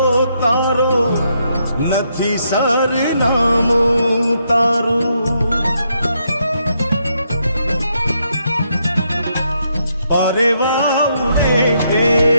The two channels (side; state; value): both; inverted; correlation -0.77